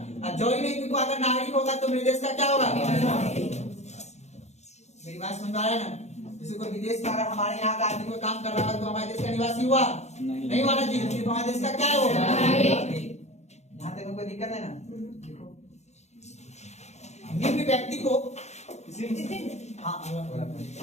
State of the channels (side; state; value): right; late; 0.32 ms